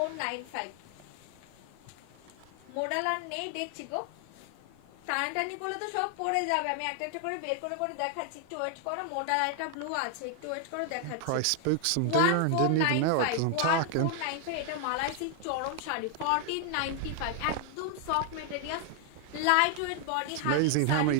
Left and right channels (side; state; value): both; different; correlation 0.00